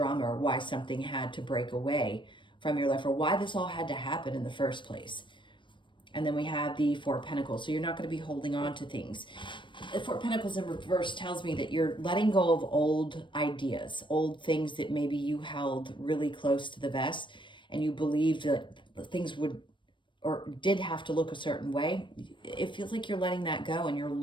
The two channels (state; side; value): late; right; 0.23 ms